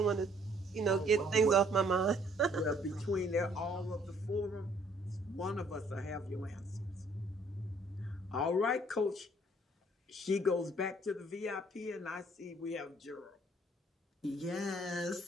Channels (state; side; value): normal; both; correlation 0.62